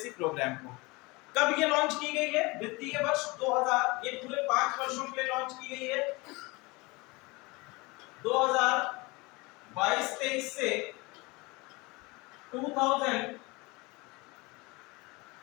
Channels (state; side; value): quieter; right; 24.8 dB